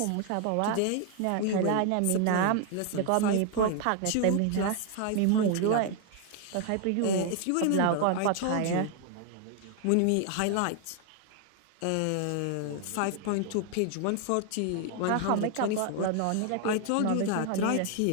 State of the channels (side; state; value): both; different; correlation 0.00